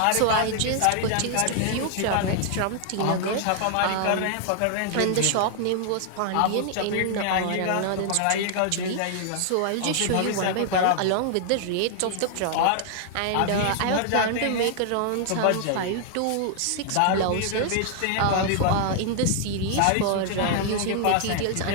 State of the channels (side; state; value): both; different; correlation 0.00